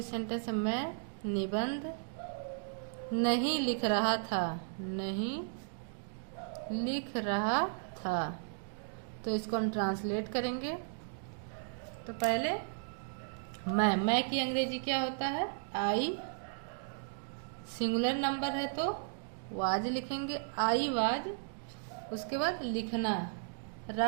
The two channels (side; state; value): left; silent; digital silence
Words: सेंटेंस है, मैं निबंध नहीं लिख रहा था, नहीं लिख रहा था। तो इसको हम ट्रांसलेट करेंगे। तो पहले मैं की अंग्रेजी क्या होता है, आई। सिंगुलर नंबर है तो वाज लिखेंगे, आई वाज। उसके बाद लिखना,